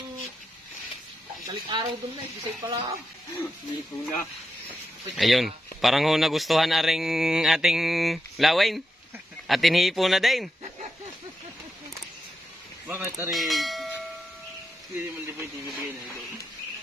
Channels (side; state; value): both; normal; correlation 0.86